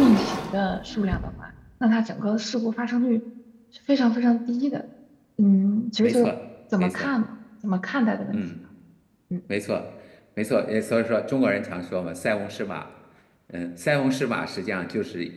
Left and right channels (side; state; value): both; identical; correlation 1.00